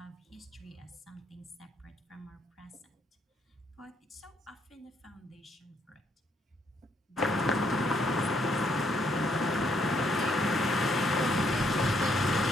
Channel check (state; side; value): normal; both; correlation 0.71